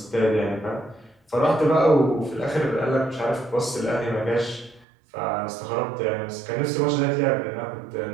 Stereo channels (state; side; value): drops out; left; at 4.9 s